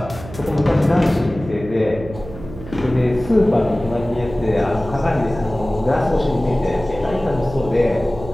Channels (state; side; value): noise; right; hum, 14 dB below the sound